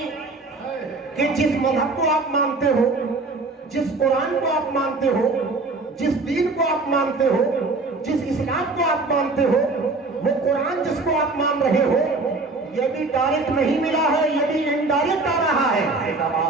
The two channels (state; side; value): quieter; left; 3.5 dB